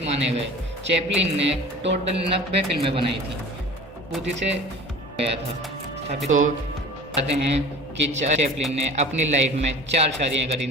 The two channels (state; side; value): normal; both; correlation 0.41